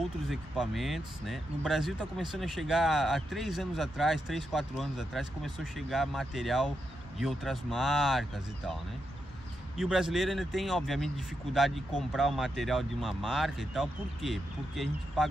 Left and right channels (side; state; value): both; normal; correlation 0.84